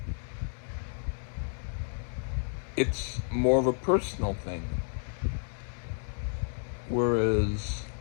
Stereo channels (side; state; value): right; silent; digital silence